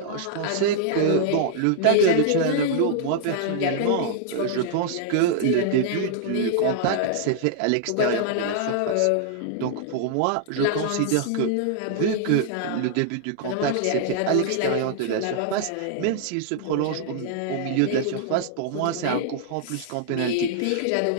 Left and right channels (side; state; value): both; different; correlation -0.01